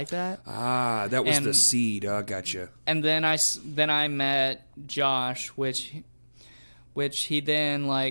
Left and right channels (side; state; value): both; inverted; correlation -1.00